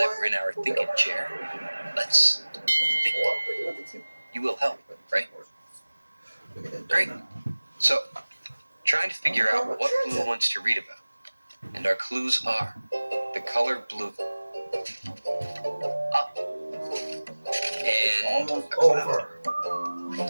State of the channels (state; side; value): inverted; both; correlation -1.00